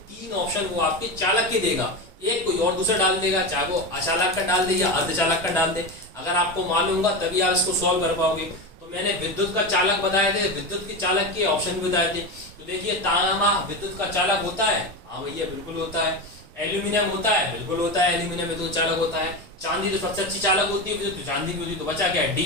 3 ऑप्शन वो आपके चालक के देगा, एक कोई और दूसरा डाल देगा, चाहे वो अचालक का डाल दे या अर्धचालक का डाल दे। अगर आपको मालूम होगा तभी आप इसको सॉल्व कर पाओगे। तो मैंने विद्युत का चालक बताए थे, विद्युत के चालक के ऑप्शन भी बताए थे। तो देखिए तांबा विद्युत का चालक होता है, हाँ भैया बिल्कुल होता है। एल्यूमिनियम होता है, बिल्कुल होता है, एल्यूमिनियम विद्युत चालक होता है। चांदी तो सबसे अच्छी चालक होती है, विद्युत चांदी की होती है। तो बचा क्या,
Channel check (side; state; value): both; normal; correlation 0.20